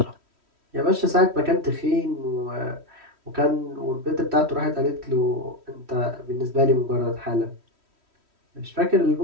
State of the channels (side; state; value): left; late; 3.1 ms